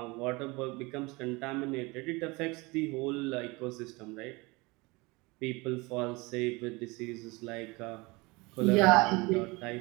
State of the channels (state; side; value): quieter; left; 24.9 dB